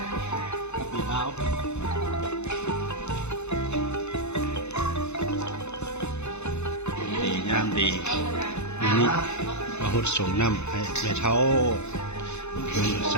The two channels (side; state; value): right; late; 0.81 ms